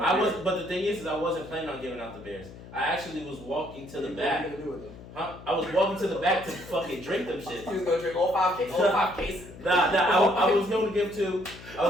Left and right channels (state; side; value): noise; left; hum, 16 dB below the sound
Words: But the thing is I wasn't planning on giving out the beers. I actually was walking to the back. What are you gonna do with them? Huh? I was walking to the back to fucking drink them shit. You was gonna drink all 5 cases. I was gonna give 2. I